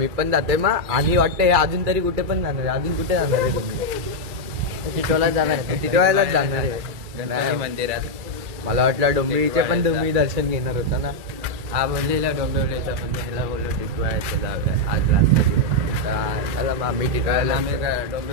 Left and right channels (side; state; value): left; late; 2.3 ms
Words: पण जातोय. मग आणि वाटतं हे अजून तरी कुठे पण जाणार आहे. अजून कुठे जाणार आहे तुम्ही? टिटवाळ्यालाच जाणार आहे. टिटवाळ्यालाच जाणार आहे गणपती मंदिरात. मला वाटलं डोंबिवलीचे पण तुम्ही दर्शन घेणार होता ना. हा बोललेला डोंबिवलीचा पण ह्याला बोललो टिटवाळ्याचं जाऊया आज रास्ता. चला मग आम्ही टिटवाळ्याला आम्ही